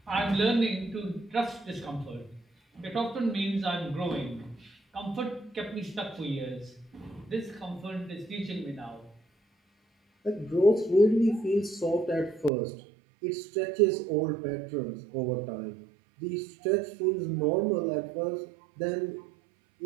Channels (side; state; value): left; drops out; at 12.5 s